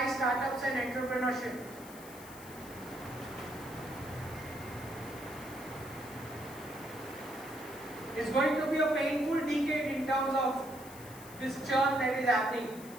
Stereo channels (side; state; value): left; noise; hiss, 17 dB below the sound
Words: startups and entrepreneurship. It's going to be a painful decade in terms of this churn that is happening.